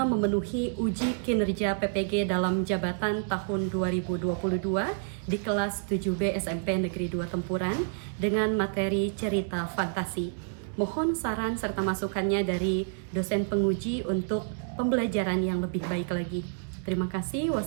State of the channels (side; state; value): left; silent; digital silence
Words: memenuhi uji kinerja PPG dalam jabatan tahun 2022 di kelas 7B SMP Negeri 2 Tempuran dengan materi cerita fantasi. Mohon saran serta masukannya dari dosen penguji untuk pembelajaran yang lebih baik lagi. Terima kasih.